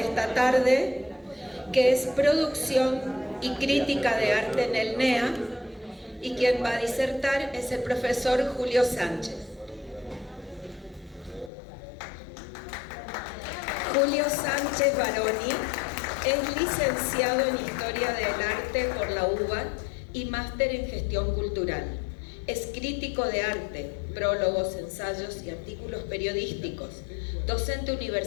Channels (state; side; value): drops out; right; at 11.5 s